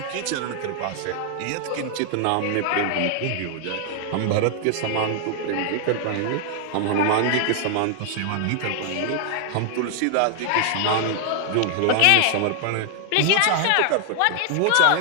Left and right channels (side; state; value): both; different; correlation 0.00